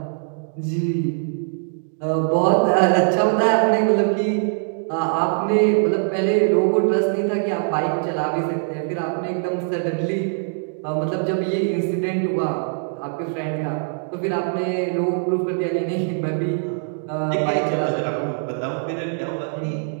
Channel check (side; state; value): left; silent; digital silence